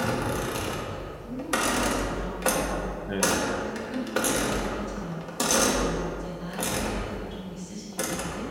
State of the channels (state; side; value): identical; both; correlation 1.00